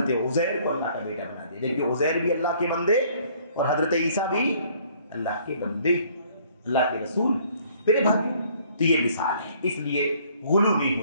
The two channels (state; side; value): inverted; both; correlation -0.59